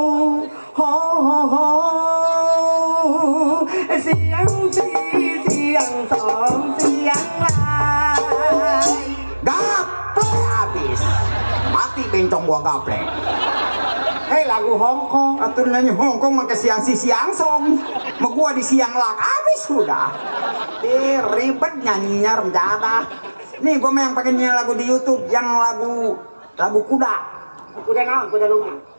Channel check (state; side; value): inverted; both; correlation -1.00